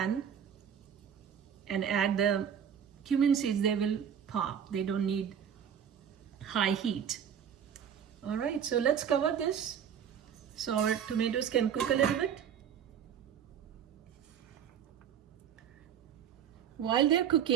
and add the cumin seeds, they will pop. They don't need high heat. All right, so let's cover this so our tomatoes can cook a little bit. While they're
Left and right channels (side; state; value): left; quieter; 8.5 dB